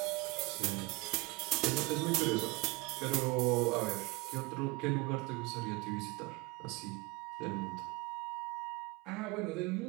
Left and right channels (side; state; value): left; quieter; 23.7 dB